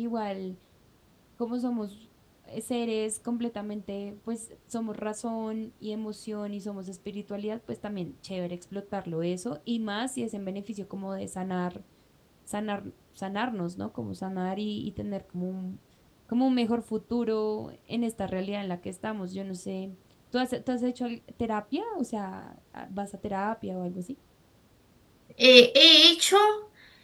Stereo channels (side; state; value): both; identical; correlation 1.00